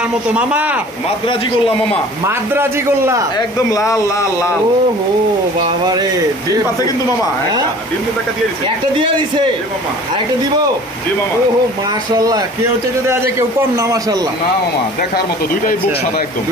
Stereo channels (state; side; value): normal; both; correlation 0.46